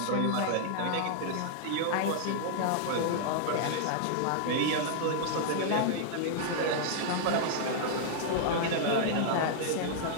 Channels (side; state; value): both; different; correlation -0.01